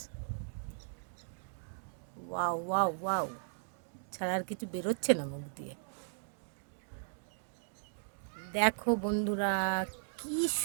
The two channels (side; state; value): left; silent; digital silence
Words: ওয়াও ওয়াও ওয়াও, ছাড়া আর কিছু বেরোচ্ছে না মুখ দিয়ে। দেখো বন্ধুরা, কি